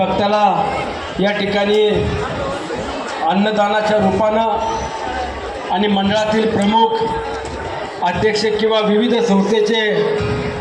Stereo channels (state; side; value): identical; both; correlation 1.00